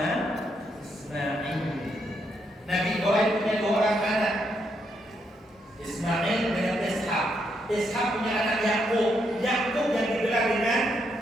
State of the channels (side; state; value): both; normal; correlation 0.78